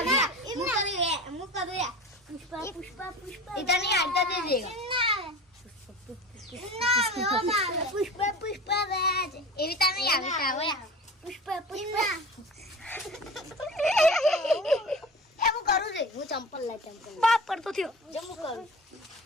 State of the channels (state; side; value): normal; both; correlation 0.35